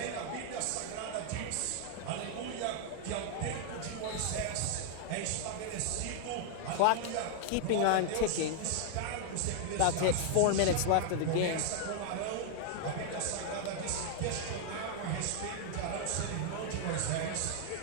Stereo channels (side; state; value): both; different; correlation 0.00